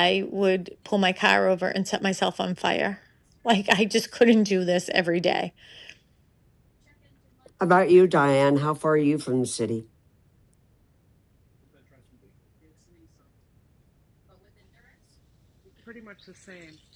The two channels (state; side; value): identical; both; correlation 1.00